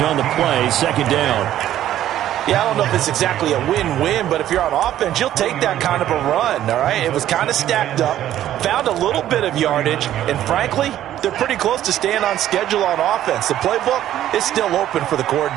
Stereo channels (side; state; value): left; quieter; 12.3 dB